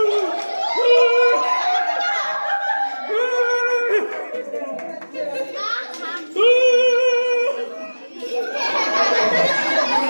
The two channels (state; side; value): inverted; both; correlation -1.00